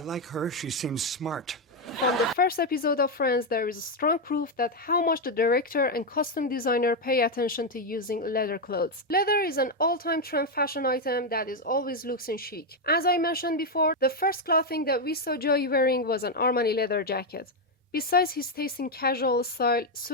like her. She seems smart. From the first episode of Friends, there is strong proof that how much the director and costume designer pay attention to using leather clothes. Leather is an all-time trend fashion item that is always looks and chic. As I mentioned before, the first clothing that we saw Joey wearing was an Armani leather jacket. Besides his taste in casual style,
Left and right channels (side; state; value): both; normal; correlation 0.03